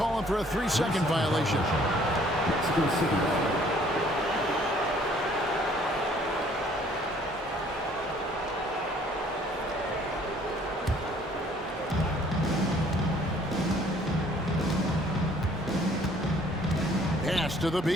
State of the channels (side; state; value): both; normal; correlation 0.59